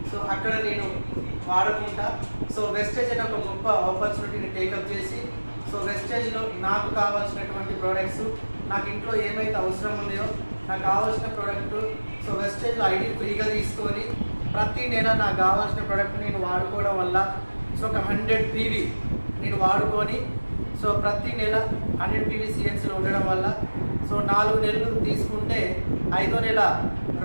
అక్కడ నేను వాడుకుంటా. వెస్టేజ్ అనే ఒక గొప్ప ఆపర్చునిటీని టేకప్ చేసి వెస్టేజ్లో నాకు కావాల్సినటువంటి ప్రోడక్ట్స్, నాకు ఇంట్లో ఏమైతే అవసరం ఉన్నాయో నాకు కావాల్సిన ప్రోడక్ట్ వెస్టేజ్లో ఐడి ఫ్రీగా తీసుకొని ప్రతి నెల నాకు కావాల్సిన ప్రోడక్ట్ నేను వాడుకోవడం వల్ల ఒక 100 PV నేను వాడుకొని ప్రతి నెల 100 PV సిఎన్సీలో ఉండడం వల్ల 4 నెలలు తీసుకుంటే 5వ నెల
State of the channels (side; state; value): both; inverted; correlation -1.00